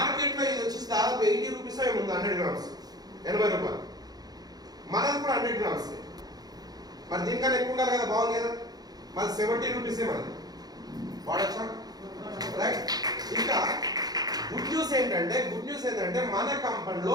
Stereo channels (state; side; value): late; left; 0.19 ms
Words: ఇది వచ్చి దాదాపు 80 రూపీస్ ఏముంది. 100 గ్రామ్స్ 80 రూపాయలు. మనది కూడా 100 గ్రామ్స్. మరి దీనికన్నా ఎక్కువ ఉండాలి కదా. బాగుంది కదా. మరి 70 రూపీసే మనది. వాడచ్చా? రైట్. ఇంకా గుడ్ న్యూస్ ఏంటంటే మన